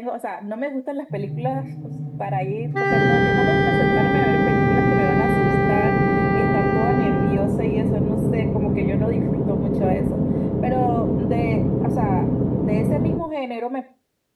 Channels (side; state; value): both; identical; correlation 1.00